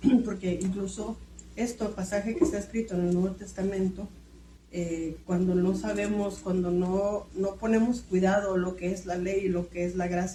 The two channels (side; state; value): both; identical; correlation 1.00